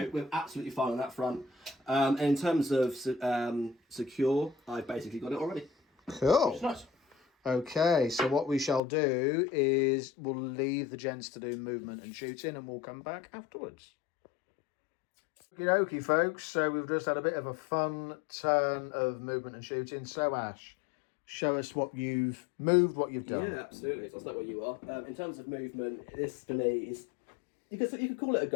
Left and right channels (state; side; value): drops out; right; at 8.8 s